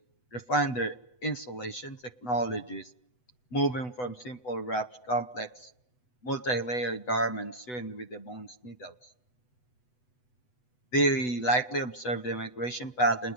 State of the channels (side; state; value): right; late; 8.0 ms